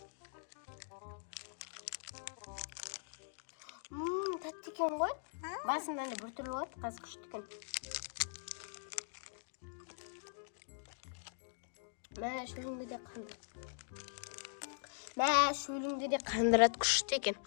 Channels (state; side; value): silent; right; digital silence